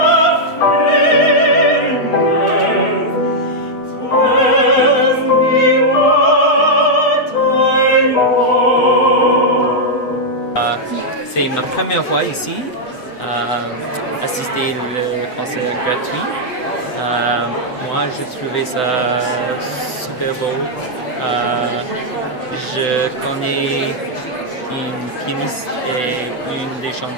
C'est ma première fois ici, assister au concert gratuit. Moi, je trouvais ça super beau. Je connais une pianiste et une des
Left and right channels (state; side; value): late; right; 7.9 ms